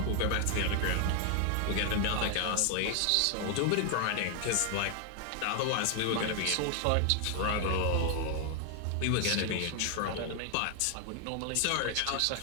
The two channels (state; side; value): different; both; correlation 0.00